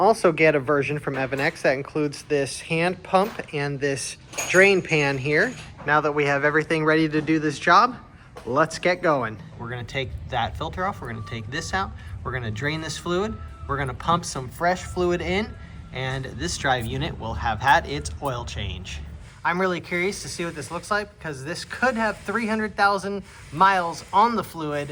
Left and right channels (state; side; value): identical; both; correlation 1.00